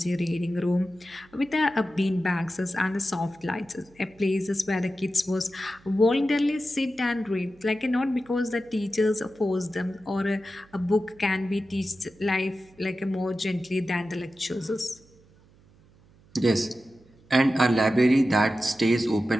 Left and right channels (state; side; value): noise; right; hum, 28 dB below the sound